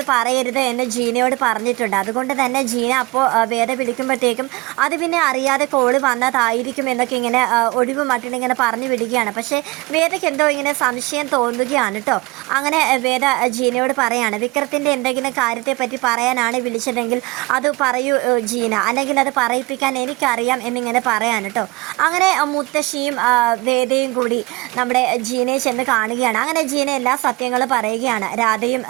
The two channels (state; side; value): quieter; left; 23.7 dB